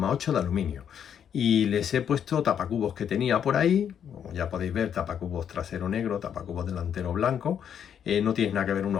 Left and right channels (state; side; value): quieter; right; 8.6 dB